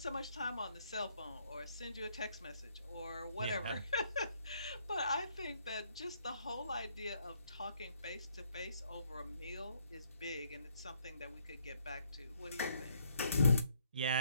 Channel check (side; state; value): both; inverted; correlation -0.70